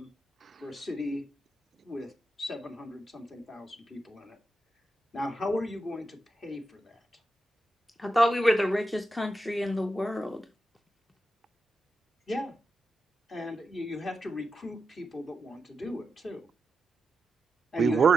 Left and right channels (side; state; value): both; normal; correlation 0.89